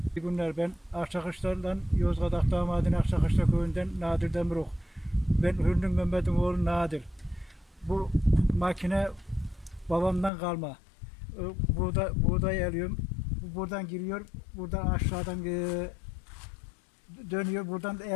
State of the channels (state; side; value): drops out; right; at 10.3 s